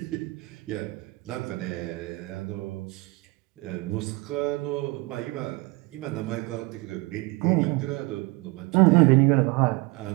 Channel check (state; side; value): quieter; left; 24.2 dB